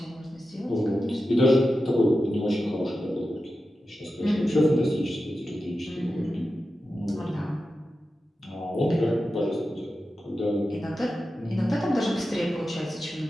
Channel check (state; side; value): normal; both; correlation 0.92